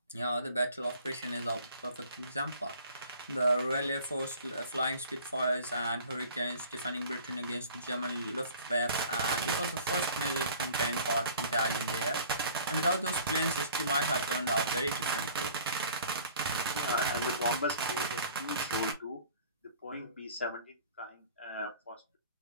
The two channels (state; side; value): inverted; both; correlation -0.49